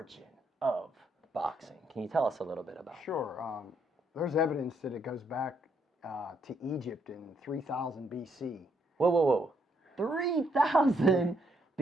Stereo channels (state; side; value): normal; both; correlation 0.73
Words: of boxing. Can you tell us a little bit about it? Sure. There's evidence that it goes back to Egypt in 3000 BC. Whoa. 3000